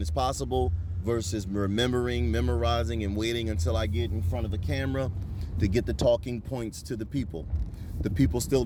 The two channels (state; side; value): identical; both; correlation 1.00